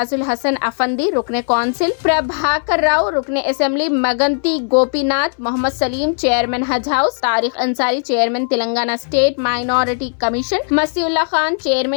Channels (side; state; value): right; silent; 62 dB below the other